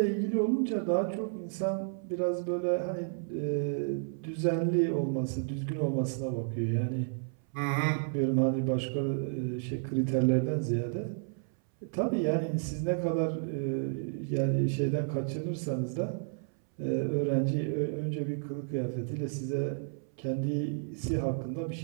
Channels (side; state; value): left; silent; 57 dB below the other